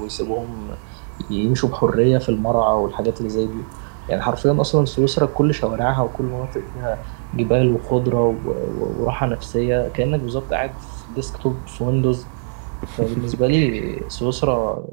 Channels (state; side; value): silent; left; digital silence